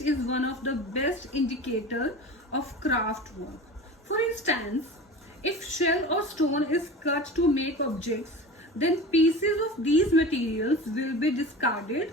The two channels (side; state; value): both; normal; correlation 0.34